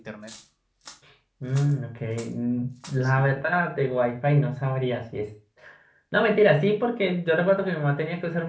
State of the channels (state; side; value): identical; both; correlation 1.00